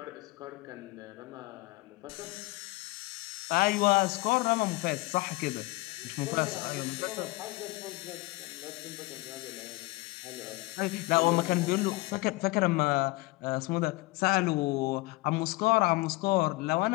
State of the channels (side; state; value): right; quieter; 22.4 dB